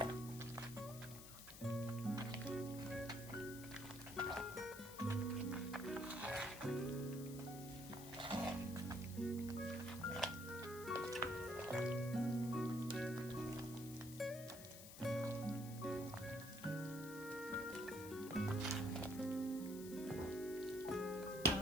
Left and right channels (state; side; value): noise; left; hiss, 13 dB below the sound